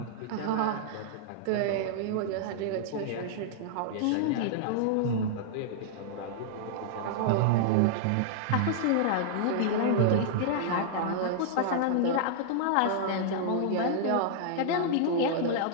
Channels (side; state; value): both; different; correlation -0.01